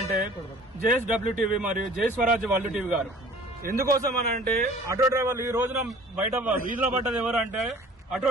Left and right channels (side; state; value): both; normal; correlation 0.49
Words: JSWTV మరియు జై స్వరాజ్ వరల్డ్ టీవీ గారు. ఎందుకోసం అనంటే ఆటో డ్రైవర్లు ఈ రోజున బయట వీధిలో పడ్డది ఎవరంటే ఆటో